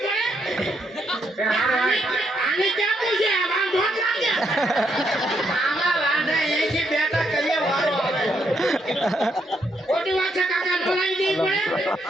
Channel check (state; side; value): normal; both; correlation 0.76